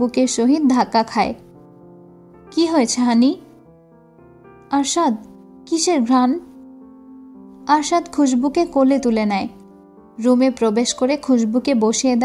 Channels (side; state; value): both; identical; correlation 1.00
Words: সহিত ধাক্কা খায়। কি হয়েছে হানি? আরশাদ, কিসের ঘ্রাণ? আরশাদ খুশবুকে কোলে তুলে নেয়। রুমে প্রবেশ করে খুশবুকে বসিয়ে